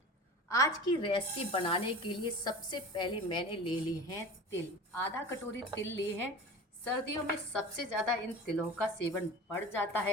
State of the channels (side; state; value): both; normal; correlation 0.35